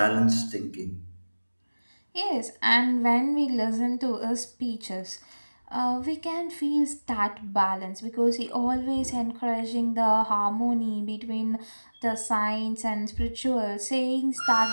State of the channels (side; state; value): both; inverted; correlation -1.00